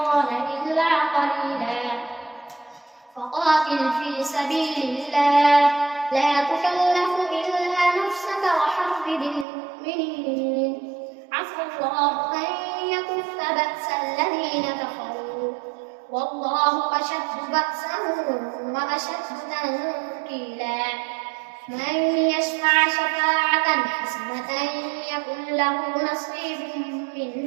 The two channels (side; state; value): left; drops out; at 9.5 s